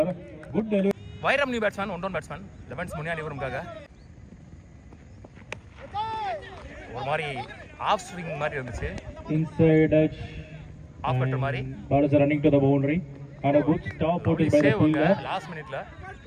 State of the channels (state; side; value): identical; both; correlation 1.00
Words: Good delivery. Vairam new batsman, one down batsman. Levens Munyanipuram kaga. ஒரு மாதிரி ஆஃப் ஸ்விங் மாதிரி இருந்துச்சு. Inside edge. ஆஃப் கட்டர் மாதிரி. Ball is running to the boundary. And a good stop put by the fielder. Last minuteல